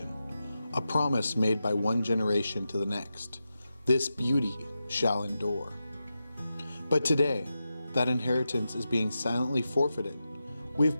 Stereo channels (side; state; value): both; inverted; correlation -0.90